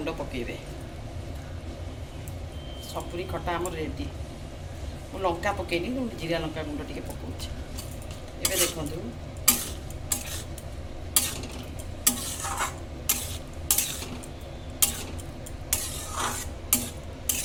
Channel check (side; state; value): both; identical; correlation 1.00